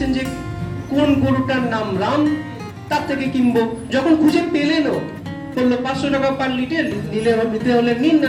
যে কোন গরুটার নাম রাম, তার থেকে কিনবো। যখন খুঁজে পেলেনও, বললো 500 টাকা পার লিটার, নিতে হলে নিন,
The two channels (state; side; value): identical; both; correlation 1.00